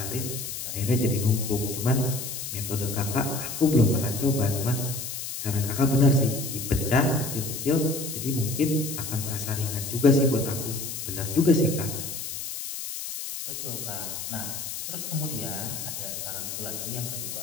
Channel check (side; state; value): left; noise; hiss, 6 dB below the sound